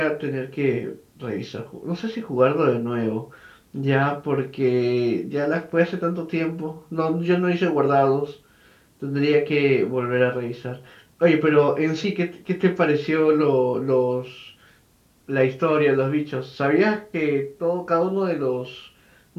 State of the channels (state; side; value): identical; both; correlation 1.00